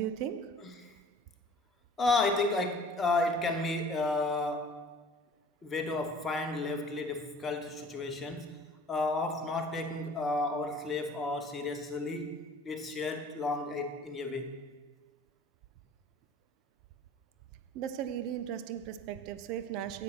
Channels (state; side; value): normal; both; correlation 0.48